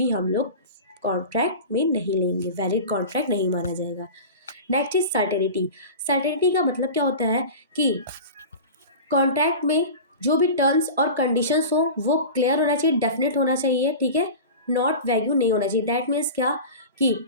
हम लोग कॉन्ट्रैक्ट में नहीं लेंगे, वैलिड कॉन्ट्रैक्ट नहीं माना जाएगा। Next is certainty. सर्टेनिटी का मतलब क्या होता है कि कॉन्ट्रैक्ट में जो भी टर्म्स और कंडीशंस हो वो क्लियर होना चाहिए, डेफिनेट होना चाहिए। ठीक है, नॉट वैग्यू नहीं होना चाहिए। दैट मीन्स क्या कि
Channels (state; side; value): inverted; both; correlation -0.32